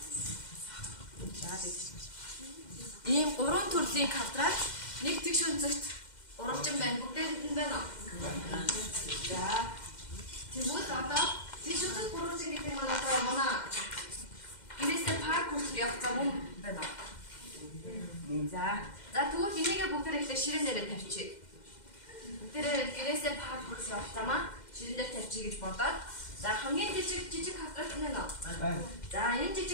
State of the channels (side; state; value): right; late; 2.1 ms